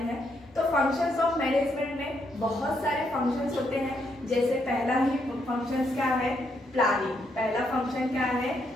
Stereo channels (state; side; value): normal; both; correlation 0.76